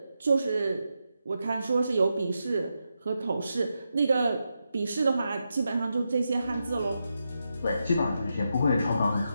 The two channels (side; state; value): both; inverted; correlation -0.86